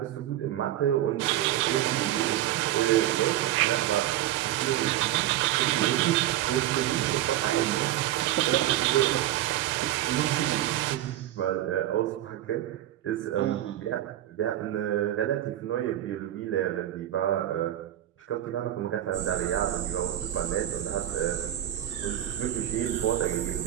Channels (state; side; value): quieter; left; 13.2 dB